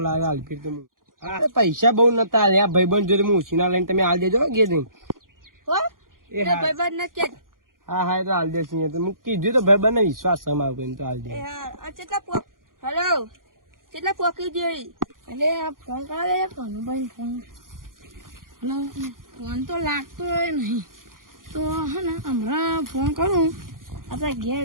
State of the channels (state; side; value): late; left; 0.90 ms